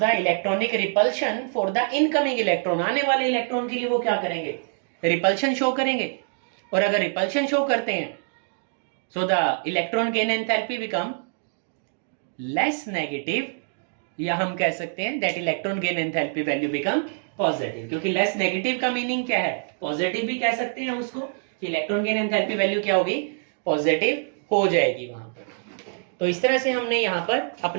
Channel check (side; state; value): left; silent; digital silence